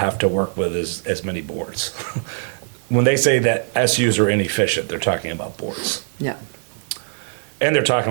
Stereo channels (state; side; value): silent; left; digital silence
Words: to work with as many boards. When they say that SUs are inefficient, they're talking about boards. Yeah. And they're